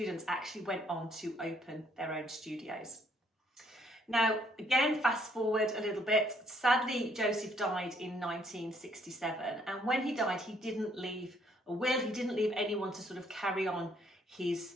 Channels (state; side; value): normal; both; correlation 0.67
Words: actually went on to open their own studios. Now, again, fast forward a little bit. Sadly, Joseph died in 1967. And when he died, he didn't leave a will, he didn't leave anyone to sort of carry on his